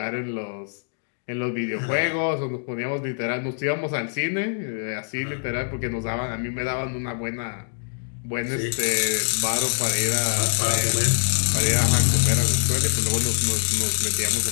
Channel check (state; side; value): silent; right; digital silence